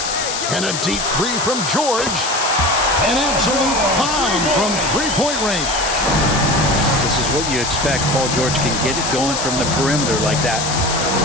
And a deep three from George. An absolute bomb from three-point range. This is what you expect. Paul George can get it going from the perimeter like that.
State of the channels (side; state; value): left; noise; hiss, 3 dB below the sound